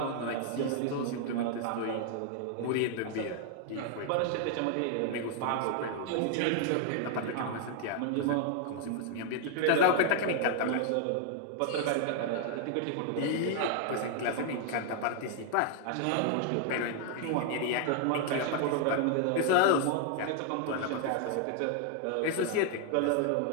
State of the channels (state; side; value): different; both; correlation 0.00